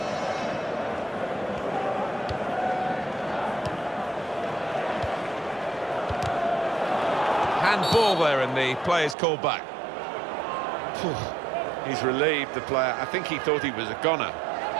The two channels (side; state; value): left; drops out; at 9.2 s